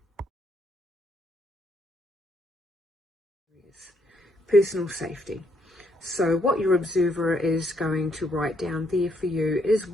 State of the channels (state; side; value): normal; both; correlation 0.73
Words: Personal safety. So what your observer is going to write down there for you is